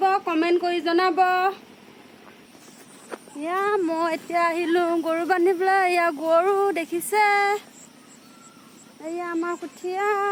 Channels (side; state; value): both; identical; correlation 1.00